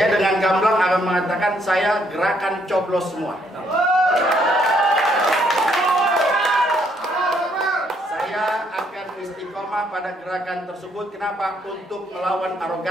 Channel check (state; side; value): normal; both; correlation 0.70